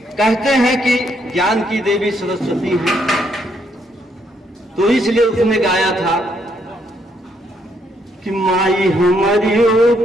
कहते हैं कि ज्ञान की देवी सरस्वती है, तो इसलिए उसने गाया था कि माई हमारियों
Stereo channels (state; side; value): normal; both; correlation 0.73